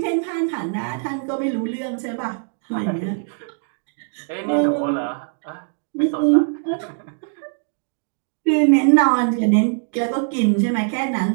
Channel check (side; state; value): left; silent; 62 dB below the other